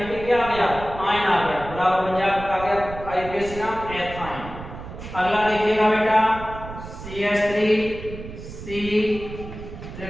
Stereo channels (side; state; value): right; noise; rumble, 12 dB below the sound